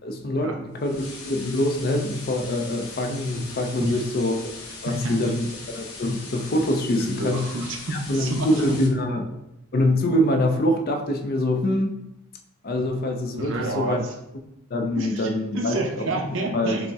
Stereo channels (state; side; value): normal; both; correlation 0.58